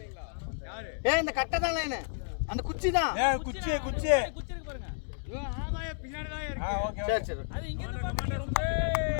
ஏய் இந்த கட்டை தான் லைன். அந்த குச்சி தான். ஏய் குச்சி குச்சி. இவன் ஆமாயே பின்னாடி தான் இருக்கு. ஓகே. சரி சரி. அது இங்க கமாண்டர் சுதே.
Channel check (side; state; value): right; silent; digital silence